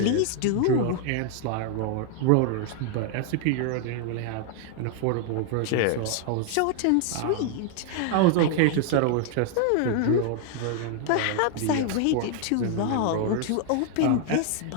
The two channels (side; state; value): both; different; correlation 0.00